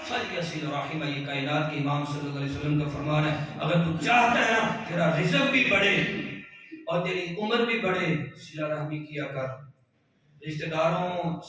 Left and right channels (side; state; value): both; identical; correlation 1.00